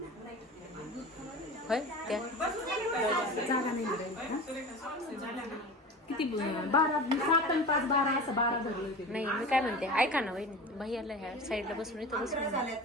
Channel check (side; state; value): both; normal; correlation 0.33